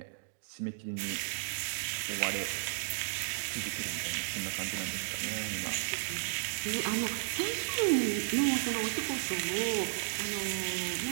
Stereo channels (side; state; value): left; silent; digital silence